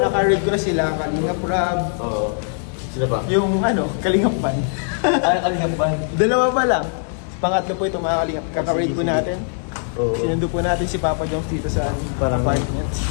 naka-rate ko na sila, Kalingap Rab. Oo. Sila ba? Yung Kalingap Pan. Kalingap Pan. Dalawa pa lang. Pangatlo po ito mga Kalingap. Kaka-rate po natin. Oo. Sinundo po natin si Papa Joms dito sa apartment.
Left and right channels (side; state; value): right; silent; digital silence